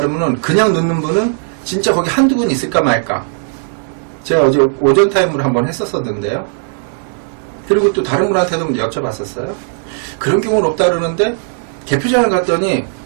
그냥 넣는 분은 진짜 거기 한두 분 있을까 말까. 제가 어제 오전 타임으로 한번 했었었는데요. 그리고 또 다른 분한테도 여쭤봤었어요. 그런 경우는 없다 그러는데 개표장을 갔더니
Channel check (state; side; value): silent; left; 64 dB below the other